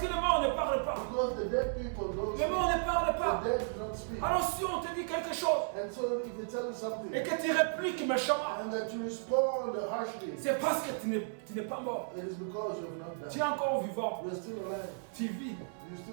les morts ne parlent pas. because the dead people don't Les morts speak. ne parlent pas. The dead do not speak. Alors si on te dit quelque chose And so if they tell you something et que tu répliques méchamment, and that you respond harshly, c'est parce que tu n'es pas mort. it is because you have not Tu es died. encore vivant. You are still alive. Tu vis. You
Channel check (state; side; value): silent; left; 55 dB below the other